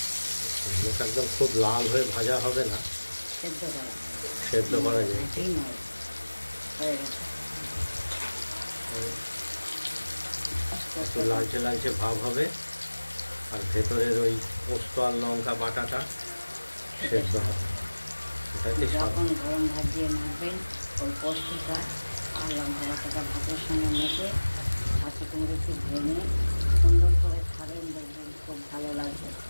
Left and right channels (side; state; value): both; inverted; correlation -1.00